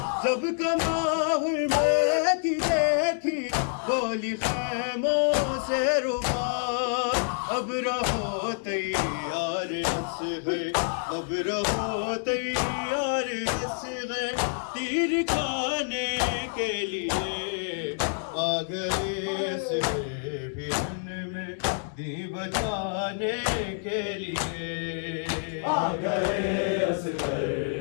جب کماحل میں کی دیکھی ہولی خیموں سے ربا اب رہو تیار اصغر اب رہو تیار اصغر تیر کھانے کے لیے آ گئے اصغر برن میں دی بچانے کے لیے آ گئے اصغر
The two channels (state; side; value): silent; right; digital silence